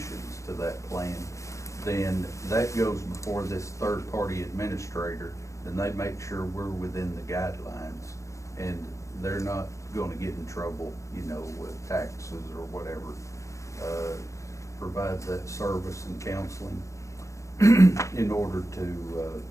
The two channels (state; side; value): late; right; 0.15 ms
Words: to that plan, then that goes before this third-party administrator, and they make sure we're within the guidelines, and they're not going to get in trouble, you know, with taxes or whatever. Provides that service and counseling in order